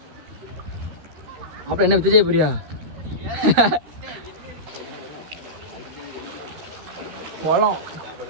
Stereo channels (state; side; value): late; left; 13 ms